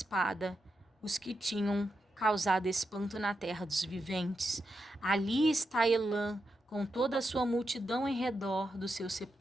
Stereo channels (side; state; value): both; normal; correlation 0.86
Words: os que tinham causado espanto na terra dos viventes. Ali está Elã, com toda a sua multidão em redor do seu